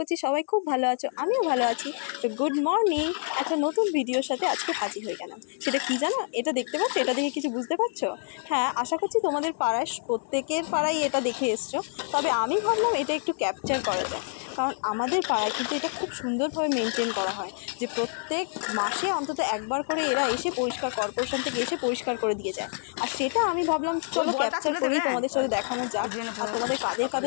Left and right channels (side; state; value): right; silent; 60 dB below the other